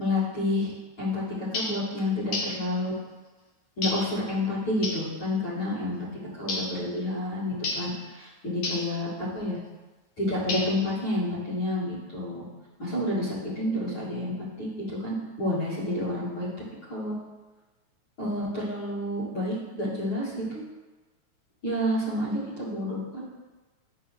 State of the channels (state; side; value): late; right; 9.2 ms